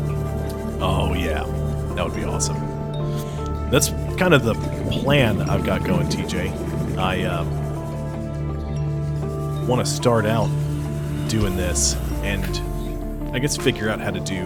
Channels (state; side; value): identical; both; correlation 1.00